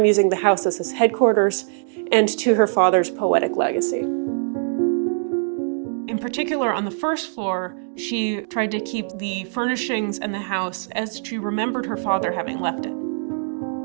using the house as his headquarters and to her father's poetic legacy. In particular, on the first floor, she tried to keep the furnishings and the house as she remembered her father having left it.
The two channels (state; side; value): silent; left; digital silence